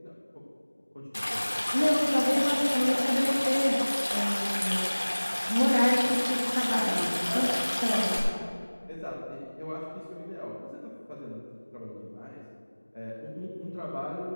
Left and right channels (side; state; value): both; inverted; correlation -1.00